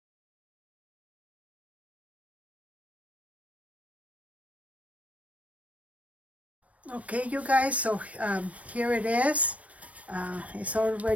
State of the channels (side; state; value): left; late; 0.066 ms